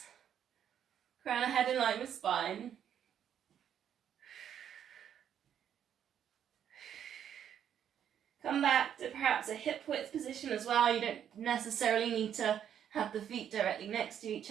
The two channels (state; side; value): quieter; left; 9.3 dB